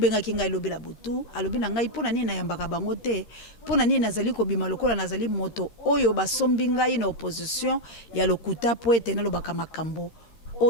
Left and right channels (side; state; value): right; late; 13 ms